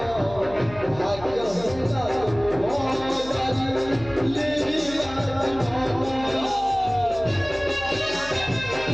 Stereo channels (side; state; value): left; noise; hum, 16 dB below the sound